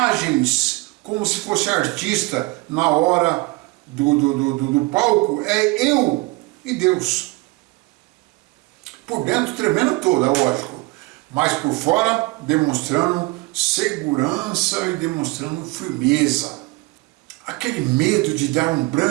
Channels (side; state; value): left; quieter; 23.7 dB